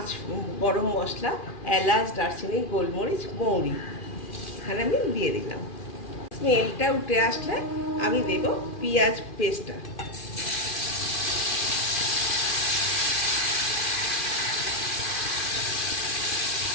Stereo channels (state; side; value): late; right; 2.4 ms